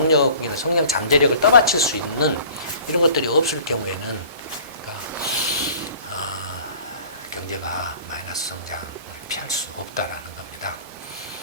성장 잠재력을 떠받칠 수 있는 이런 것들이 없을 경우에는, 그러니까 경제가 마이너스 성장을 피할 수 없다라는 겁니다.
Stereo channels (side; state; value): both; inverted; correlation -0.47